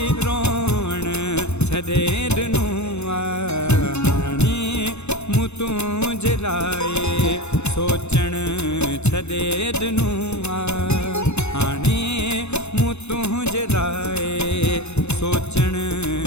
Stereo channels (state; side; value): late; right; 0.81 ms